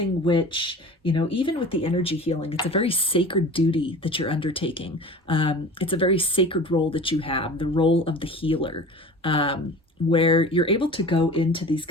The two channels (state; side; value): normal; both; correlation 0.38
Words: which, you know, even with the energy healing, it's a very sacred duty that you're undertaking. It's a very sacred role that you have, the role of the healer, where you're able to go into these